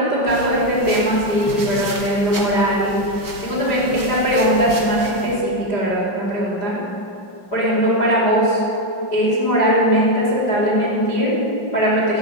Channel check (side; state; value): right; late; 5.3 ms